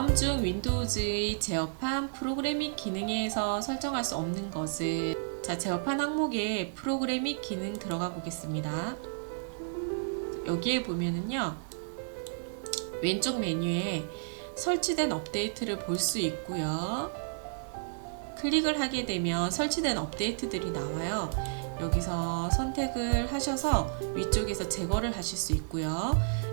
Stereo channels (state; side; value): silent; left; digital silence